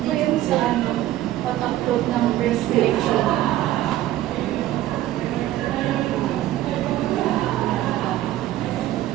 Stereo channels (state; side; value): quieter; left; 14.2 dB